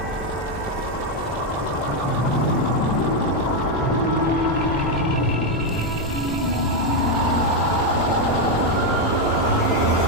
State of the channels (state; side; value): normal; both; correlation 0.04